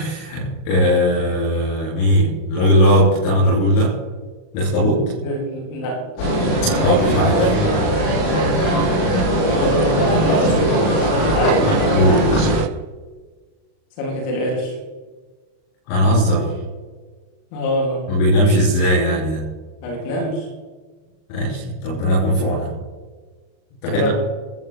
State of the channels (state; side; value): late; right; 38 ms